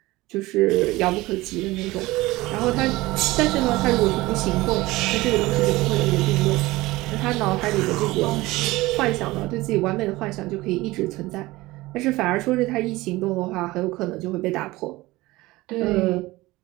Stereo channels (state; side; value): quieter; left; 19.6 dB